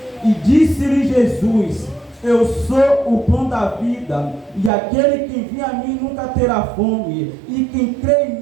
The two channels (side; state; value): left; drops out; at 4.7 s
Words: E disse-lhe Jesus: eu sou o pão da vida, e aquele que vem a mim nunca terá fome, e quem crê em